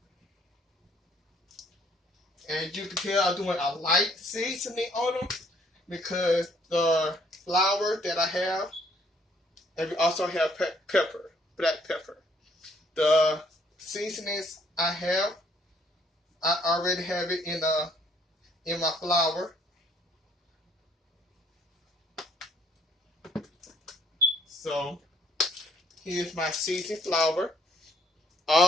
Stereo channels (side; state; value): both; normal; correlation 0.64